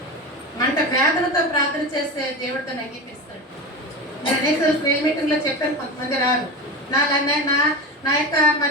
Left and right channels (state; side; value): normal; both; correlation 0.23